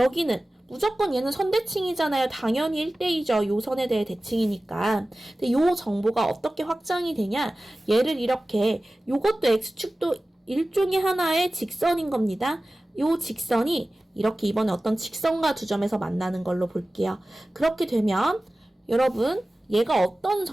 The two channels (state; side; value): normal; both; correlation 0.97